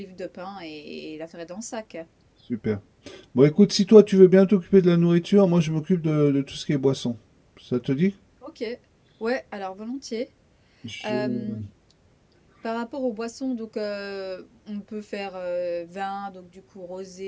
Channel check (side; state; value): both; identical; correlation 1.00